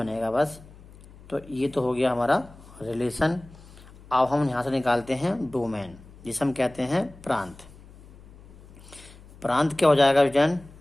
बस। तो ये तो हो गया हमारा रिलेशन। अब हम यहाँ से निकालते हैं डोमेन, जिसे हम कहते हैं प्रांत। प्रांत क्या हो जाएगा विजन,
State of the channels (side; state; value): left; noise; hum, 21 dB below the sound